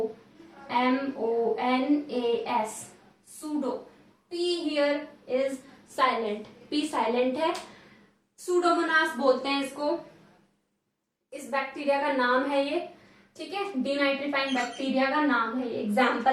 pseudo. P here is silent, P silent है, सूडोमोनास बोलते हैं इसको, इस बैक्टीरिया का नाम है ये, ठीक है, डीनाइट्रीफाइंग बैक्टीरिया का नाम है ये,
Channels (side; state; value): both; identical; correlation 1.00